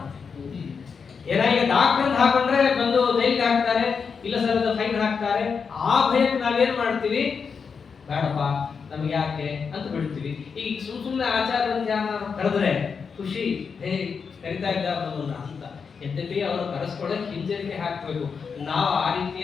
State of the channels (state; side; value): quieter; right; 5.8 dB